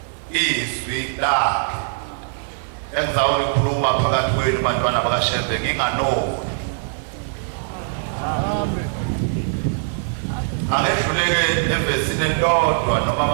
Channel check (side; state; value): left; silent; digital silence